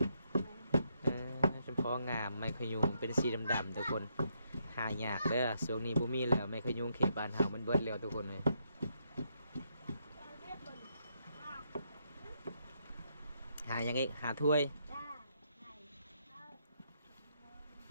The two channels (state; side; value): inverted; both; correlation -0.77